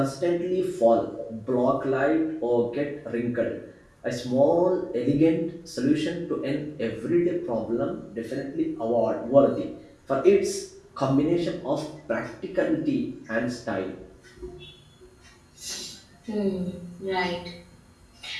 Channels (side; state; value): both; identical; correlation 1.00